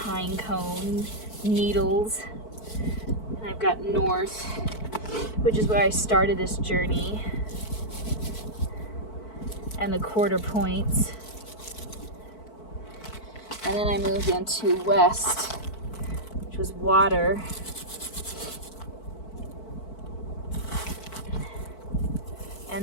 cone needles. And I've got north, which is where I started this journey, and the quarter points. And then I moved into west, which was water.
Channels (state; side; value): late; right; 4.5 ms